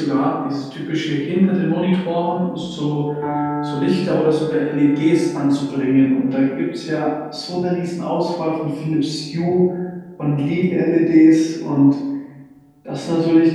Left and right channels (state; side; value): identical; both; correlation 1.00